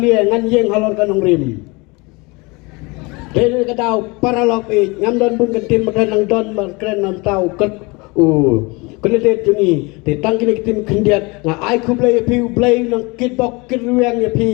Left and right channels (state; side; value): quieter; right; 26.5 dB